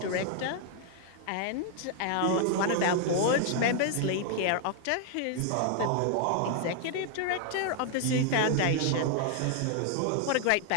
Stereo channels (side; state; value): both; different; correlation 0.00